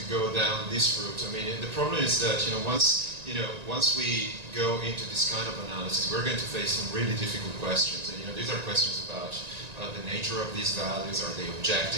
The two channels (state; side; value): late; left; 1.9 ms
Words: go down this route? I mean, the problem is that once we go into this kind of analysis, we're going to face some really difficult questions. And these are questions about the nature of these values. Are they